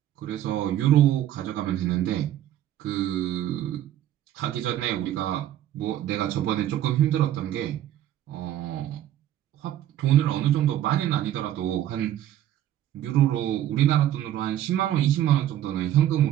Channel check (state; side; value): quieter; left; 12.1 dB